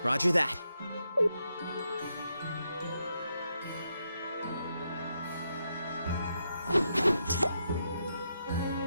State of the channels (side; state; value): both; inverted; correlation -0.81